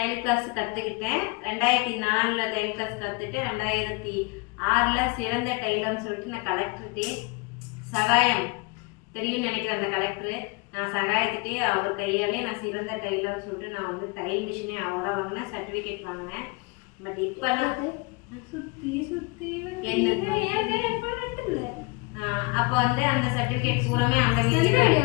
கிளாஸ் கற்றுக்கிட்டேன், 2004 தையல் கிளாஸ் கற்றுட்டு 2006 சிறந்த டெய்லர்னு சொல்லிட்டு நான் கலெக்டர்கிட்டே சகாயம் தெரியும்னு நினைக்கிறேன். அந்த கலெக்டரு நான் சகாயத்துட்டே அவர் கையாலே நான் சிறந்த டெய்லர்னு சொல்லிட்டு நான் வந்து தையல் மிஷினே அவராக வாங்கினேன், சர்டிஃபிகேட் வாங்கினேன். பட் இப்போலாம் அப்போ வந்து அந்த சர்டிஃபிகேட் பூராமே அந்த வீட்டில் தான்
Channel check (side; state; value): right; quieter; 27.4 dB